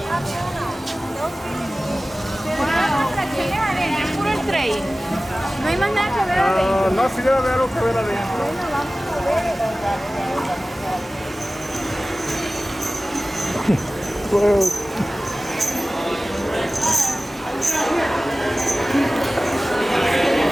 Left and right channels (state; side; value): normal; both; correlation 0.97